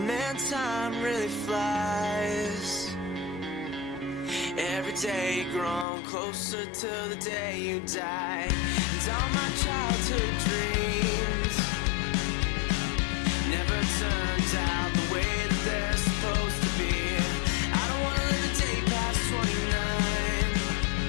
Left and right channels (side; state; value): right; drops out; at 5.9 s